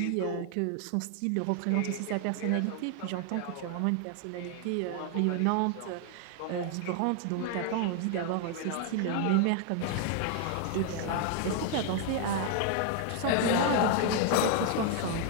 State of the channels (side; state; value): both; different; correlation 0.00